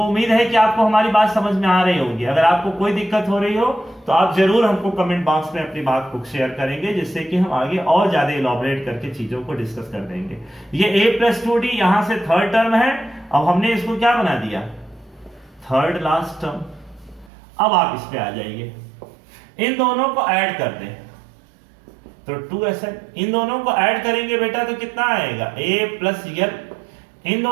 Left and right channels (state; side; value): drops out; left; at 17.3 s